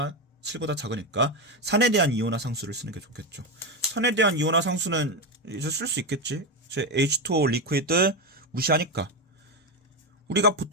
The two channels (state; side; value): normal; both; correlation 0.12